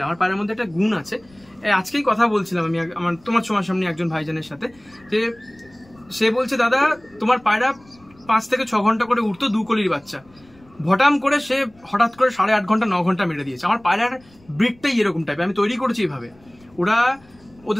আমার পায়রার মধ্যে একটা গুণ আছে। আজকেই কথা বলছিলাম আমি তোমার সামনে একজন ভাইজানের সাথে, যে সে বলছে দাদা তোমার পায়রা 5 থেকে 6 ঘন্টা করে উঠতো 2 কলির বাচ্চা, ভটাম করে সে হঠাৎ করে 8.5 ঘন্টা 9 ঘন্টা মেরে দিয়েছে। আমার পায়রার ব্রিডটাই এরকম টাইপের, আমি তৈরি করেছি এইভাবে। ওরা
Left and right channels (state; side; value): noise; left; rumble, 29 dB below the sound